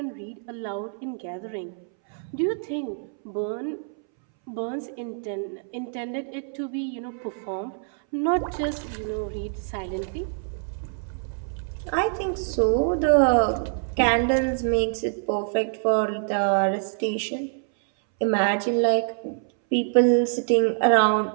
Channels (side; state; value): left; silent; 61 dB below the other